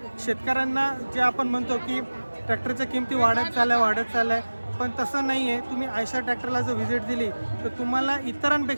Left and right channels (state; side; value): inverted; both; correlation -1.00